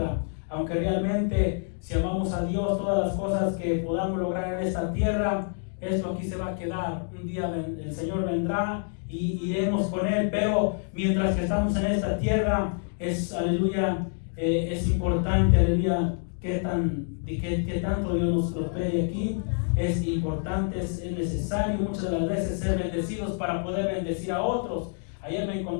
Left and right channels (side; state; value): right; silent; 60 dB below the other